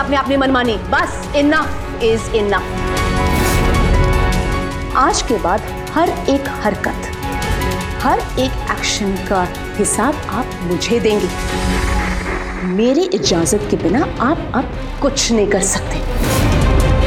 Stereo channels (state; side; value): identical; both; correlation 1.00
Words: आपने अपनी मनमानी, बस इनफ इज इनफ। आज के बाद हर एक हरकत, हर एक एक्शन का हिसाब आप मुझे देंगे। मेरी इजाजत के बिना आप अब कुछ नहीं कर सकते,